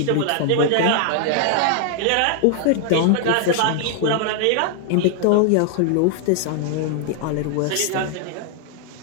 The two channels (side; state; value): both; different; correlation 0.00